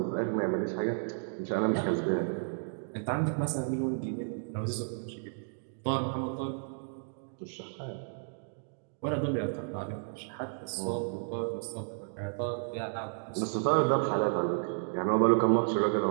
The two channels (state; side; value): silent; left; digital silence